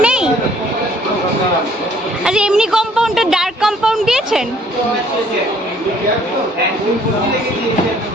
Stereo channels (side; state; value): both; normal; correlation 0.60